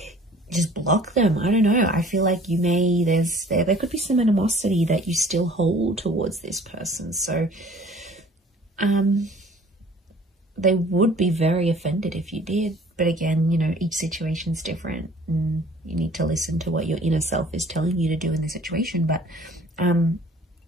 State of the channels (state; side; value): normal; both; correlation 0.51